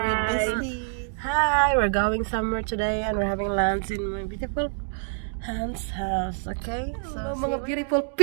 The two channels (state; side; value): silent; left; digital silence